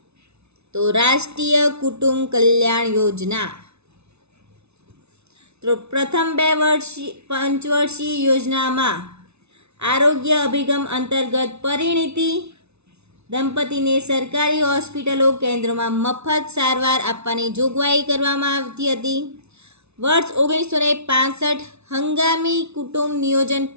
તો રાષ્ટ્રીય કુટુંબ કલ્યાણ યોજના તો પ્રથમ 2 પંચવર્ષીય યોજનામાં આરોગ્ય અભિગમ અંતર્ગત પરિણીતિ દંપતીને સરકારી હોસ્પિટલો કેન્દ્રોમાં મફત સારવાર આપવાની જોગવાઈ કરવામાં આવતી હતી. વર્ષ 1965 હંગામી કુટુંબ નિયોજન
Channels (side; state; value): left; late; 0.81 ms